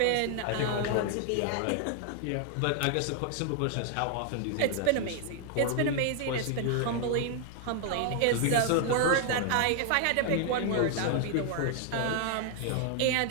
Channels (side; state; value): both; different; correlation 0.00